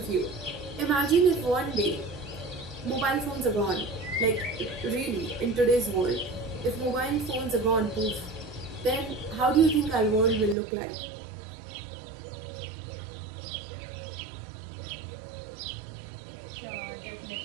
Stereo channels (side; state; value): left; drops out; at 10.6 s